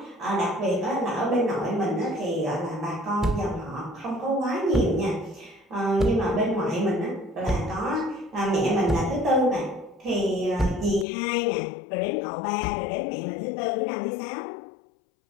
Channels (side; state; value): right; drops out; at 11.1 s